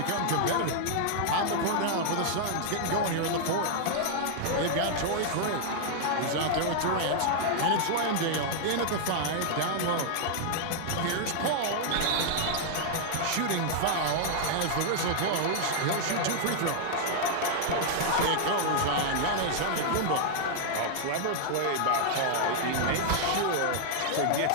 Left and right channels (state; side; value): different; both; correlation -0.01